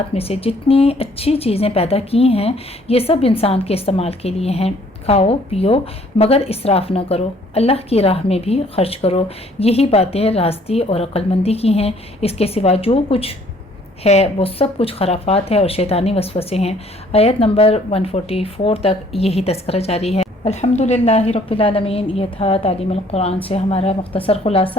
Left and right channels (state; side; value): normal; both; correlation 0.60